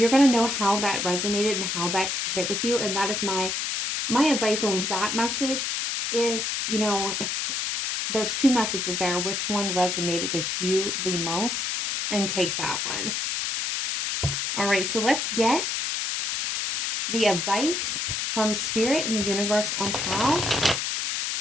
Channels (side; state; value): left; noise; hiss, 1 dB below the sound